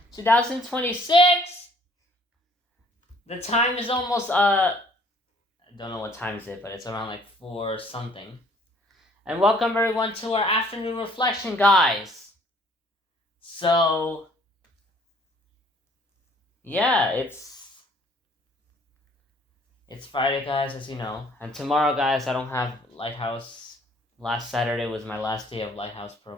2026. The time is almost, I don't know what time is it, but it's around like 4 something. And welcome everyone to our afternoon reflection, guys. So, yeah, it's Friday, guys, as you know. And tomorrow, guys, I don't have Lighthouse. Last Saturday was my last day of Lighthouse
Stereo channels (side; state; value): both; normal; correlation 0.58